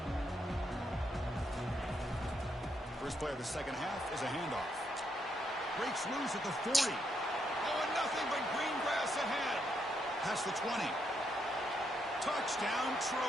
First play of the second half is a handoff. Breaks loose at the 40. Oh, and nothing but green grass ahead. Past the 20. Touchdown,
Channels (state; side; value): normal; both; correlation 0.78